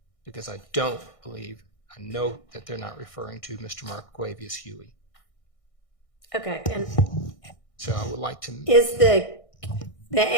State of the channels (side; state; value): right; late; 1.6 ms